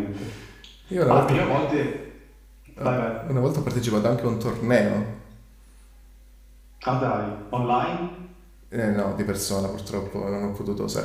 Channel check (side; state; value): both; identical; correlation 1.00